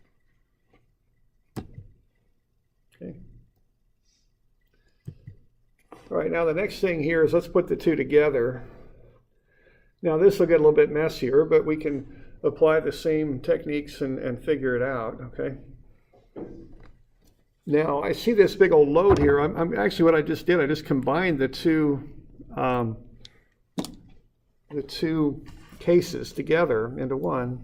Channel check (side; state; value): both; identical; correlation 1.00